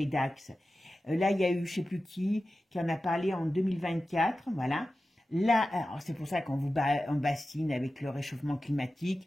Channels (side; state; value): both; normal; correlation 0.94